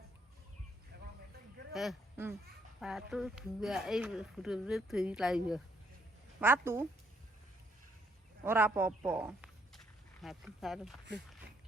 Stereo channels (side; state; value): both; normal; correlation 0.69